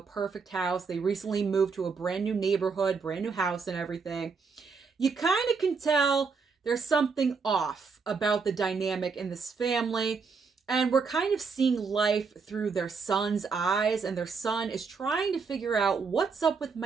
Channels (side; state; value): left; quieter; 5.1 dB